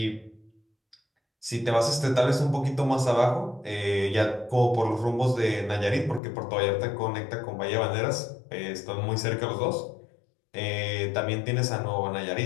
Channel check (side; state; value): right; drops out; at 6.2 s